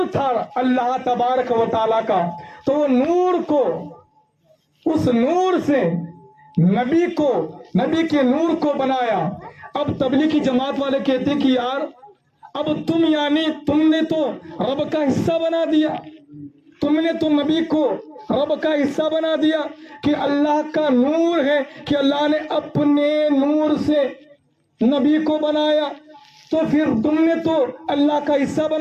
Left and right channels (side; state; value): both; identical; correlation 1.00